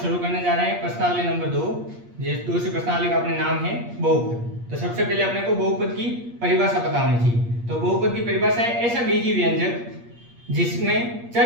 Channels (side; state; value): left; late; 8.5 ms